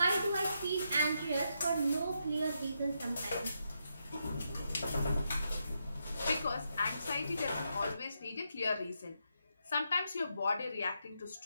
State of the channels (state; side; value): inverted; both; correlation -0.82